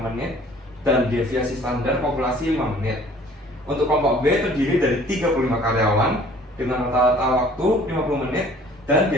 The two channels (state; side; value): normal; both; correlation 0.53